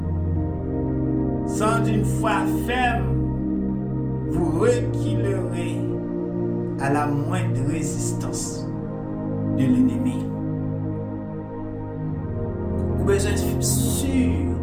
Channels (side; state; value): both; identical; correlation 1.00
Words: Sans une foi ferme, vous reculerez à la moindre résistance de l'ennemi. Vous avez besoin d'être sûr